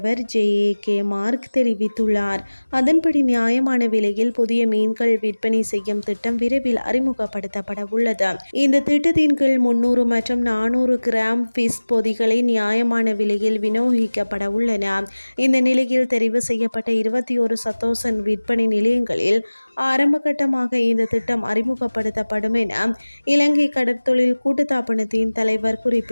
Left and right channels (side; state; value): both; inverted; correlation -1.00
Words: JAK மார்க் தெரிவித்துள்ளார். அதன்படி நியாயமான விலையில் புதிய மீன்கள் விற்பனை செய்யும் திட்டம் விரைவில் அறிமுகப்படுத்தப்பட உள்ளது. இந்த திட்டத்தின் கீழ் 300 மற்றும் 400 கிராம் ஃபிஷ் பொதிகளை நியாயமான விலையில் விநியோகிக்கப்பட உள்ளன. இந்த நிலையில் தெரிவு செய்யப்பட்ட 21 சத்தோச விற்பனை நிலையங்களில் ஆரம்பகட்டமாக இந்த திட்டம் அறிமுகப்படுத்தப்படும் என இலங்கை கடற்தொழில் கூட்டுத்தாபனத்தின் தலைவர்